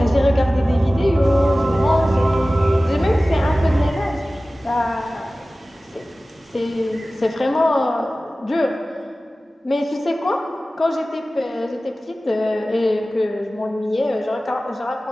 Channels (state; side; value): normal; both; correlation 0.97